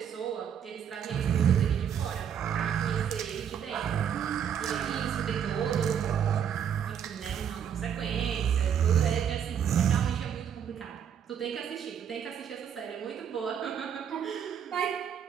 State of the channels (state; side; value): quieter; left; 8.5 dB